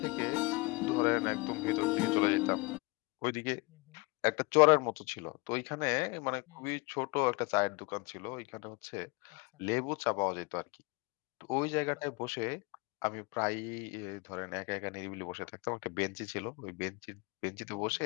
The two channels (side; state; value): right; quieter; 27.2 dB